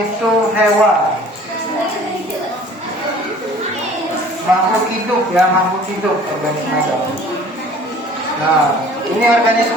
itu hewan, makhluk hidup ya, makhluk hidup organisme itu. Nah, ini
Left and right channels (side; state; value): both; normal; correlation 0.50